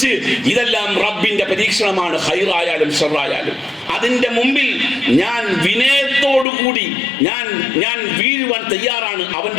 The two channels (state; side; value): drops out; right; at 6.5 s